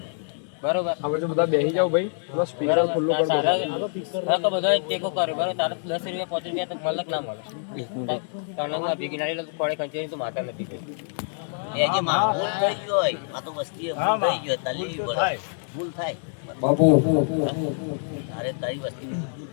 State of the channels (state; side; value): silent; right; digital silence